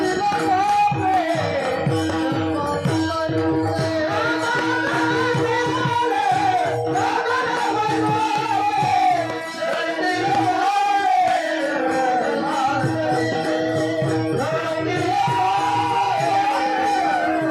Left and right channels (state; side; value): identical; both; correlation 1.00